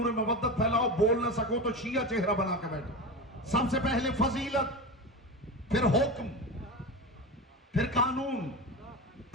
مودت پھیلاؤ. بول نہ سکو تو شیعہ چہرہ بنا کے بیٹھو. سب سے پہلے فضیلت، پھر حکم، پھر قانون،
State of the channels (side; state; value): both; normal; correlation 0.24